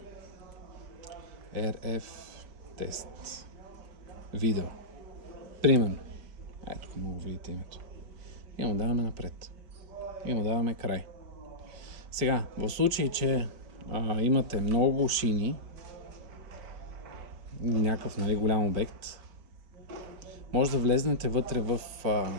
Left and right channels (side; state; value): left; late; 5.3 ms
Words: тест. Видео. Примерно. Ето, тук мога да видите името. И му даваме напред. И му даваме край. Сега, в случай, че имате много шини, някакъв голям обект, може да влезнете вътре в